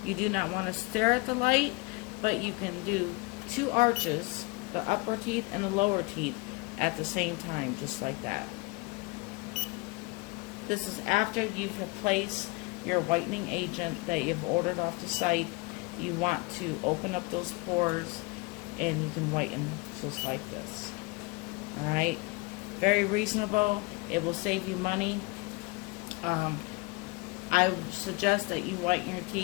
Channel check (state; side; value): quieter; right; 26.0 dB